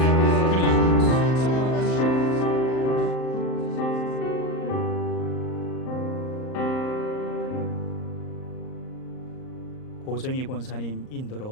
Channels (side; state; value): right; late; 38 ms